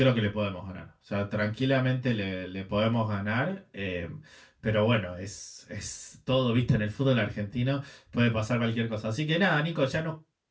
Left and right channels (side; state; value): both; identical; correlation 1.00